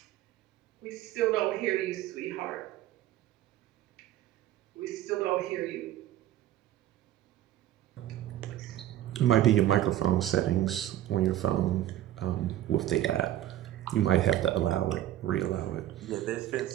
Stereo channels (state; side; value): quieter; left; 13.0 dB